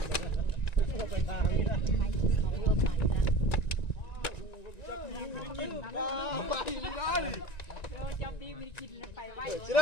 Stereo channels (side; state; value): right; late; 1.9 ms